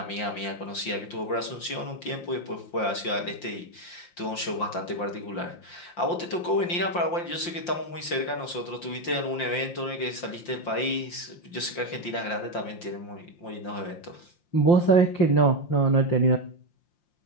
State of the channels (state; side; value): late; right; 5.7 ms